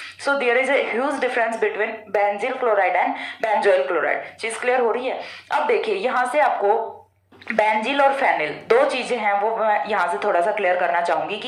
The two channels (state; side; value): identical; both; correlation 1.00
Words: So there is a huge difference between benzyl chloride and benzoyl chloride. चीज क्लियर हो रही है। अब देखिए यहाँ से आपको बेंजील और फेनिल दो चीजें हैं वो मैं यहाँ से थोड़ा सा क्लियर करना चाहूंगी